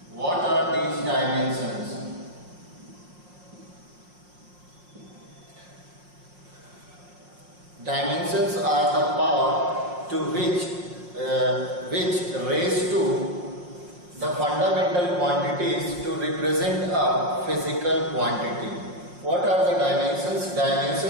What are these dimensions? Dimensions are the power to which raised to the fundamental quantities to represent a physical quantity. What are the dimensions?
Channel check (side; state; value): left; late; 5.7 ms